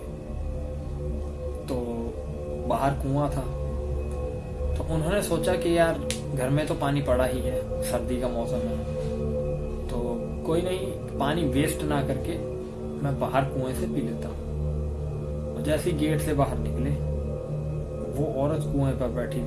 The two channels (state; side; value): identical; both; correlation 1.00